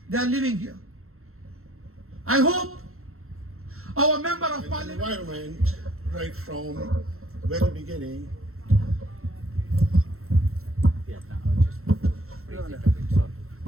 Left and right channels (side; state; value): left; late; 0.62 ms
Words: they are living here. I hope our member of parliament, environment right from very beginning.